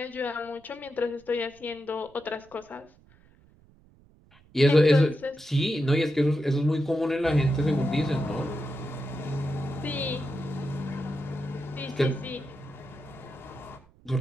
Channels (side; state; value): right; noise; rumble, 28 dB below the sound